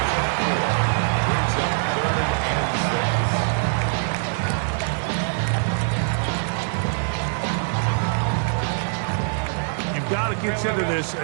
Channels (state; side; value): silent; left; digital silence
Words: You've got to consider this